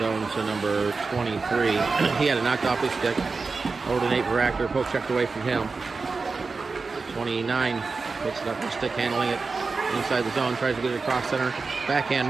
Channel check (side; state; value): left; quieter; 4.3 dB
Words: to number 23. He had it knocked off his stick. Over to Nate Baractor. Poke checked away from him. 29 picks it up with stick, handling it inside the zone. Tries to get it across center.